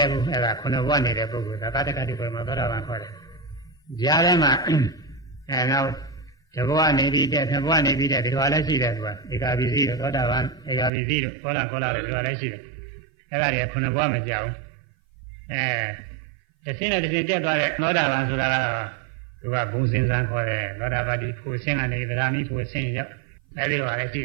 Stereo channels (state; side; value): drops out; left; at 10.9 s